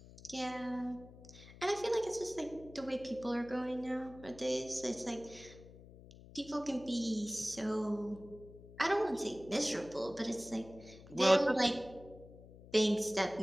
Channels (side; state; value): left; noise; hum, 19 dB below the sound